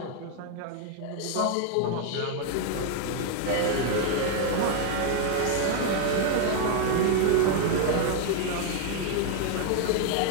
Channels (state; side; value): different; both; correlation 0.00